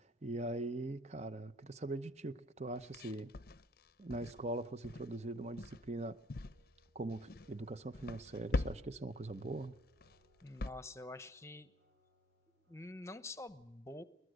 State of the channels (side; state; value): both; normal; correlation 0.59